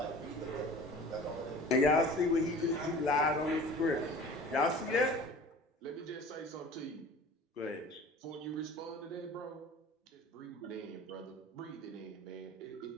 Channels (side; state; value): both; normal; correlation 0.42